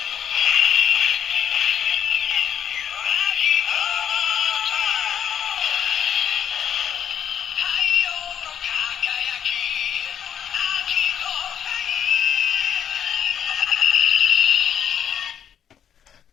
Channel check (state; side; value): quieter; right; 9.0 dB